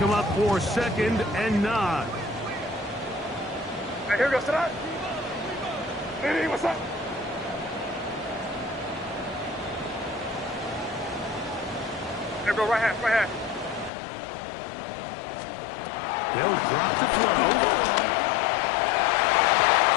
up for 2nd and 9. Here we go, sit up. Hey, what's up? Here we go, right half, right half. They'll drop the throw.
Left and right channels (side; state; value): right; drops out; at 13.9 s